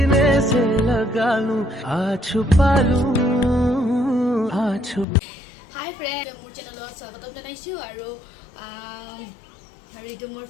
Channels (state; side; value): drops out; right; at 5.1 s